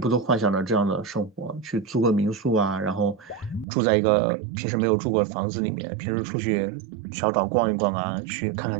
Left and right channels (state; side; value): drops out; left; at 3.7 s